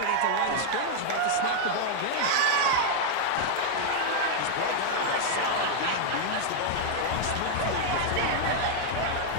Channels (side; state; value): both; different; correlation 0.00